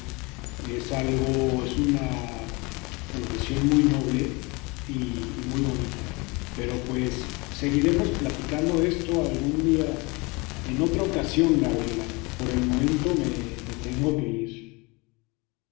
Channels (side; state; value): right; quieter; 26.5 dB